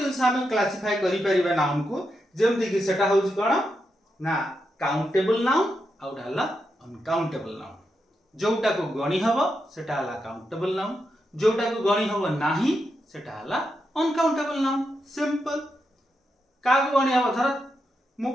हम क्लासिफाई करि परिबा नाउन को, जेमति कि सेटा होची कोन ना काउंटेबल नाउन आ गोटे हला अनकाउंटेबल नाउन। जोटा को गणी हबो सेटा हला काउंटेबल नाउन, जोटा को गणी हबो नाही सेटा हला अनकाउंटेबल नाउन। सिंपल। का को गणी हबो धर मु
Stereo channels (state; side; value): normal; both; correlation 0.85